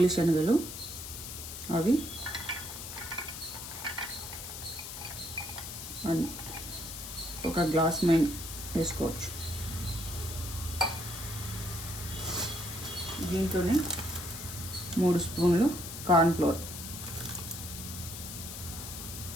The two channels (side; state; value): left; noise; hiss, 9 dB below the sound